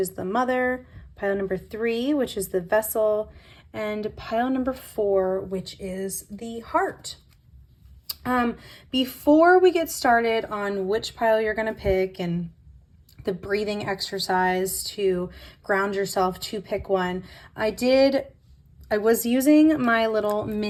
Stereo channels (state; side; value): identical; both; correlation 1.00